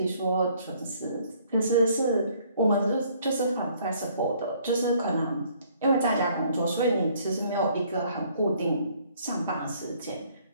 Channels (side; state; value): both; inverted; correlation -0.62